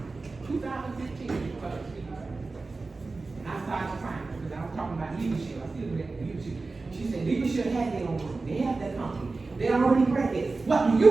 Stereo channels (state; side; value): quieter; left; 3.7 dB